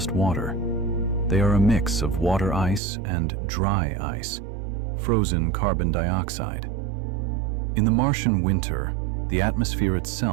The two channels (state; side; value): drops out; left; at 2.8 s